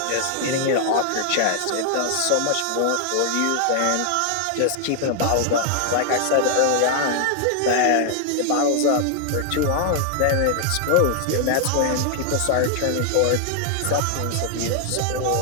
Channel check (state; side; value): different; both; correlation 0.00